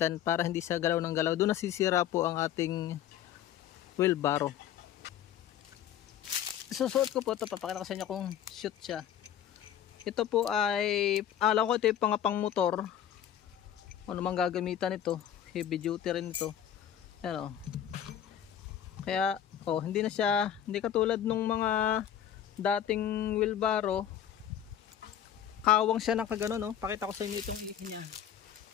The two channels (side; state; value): right; quieter; 10.2 dB